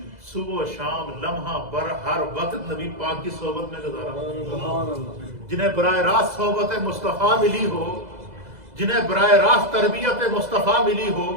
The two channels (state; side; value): late; left; 2.0 ms